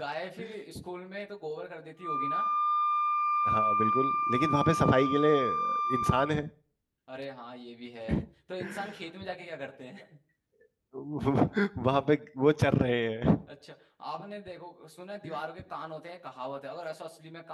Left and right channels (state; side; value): identical; both; correlation 1.00